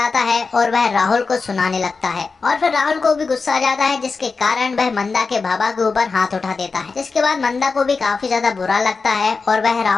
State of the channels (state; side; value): quieter; right; 4.5 dB